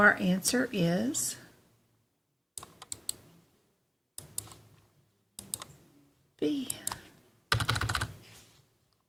answer is B.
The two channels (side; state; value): both; identical; correlation 1.00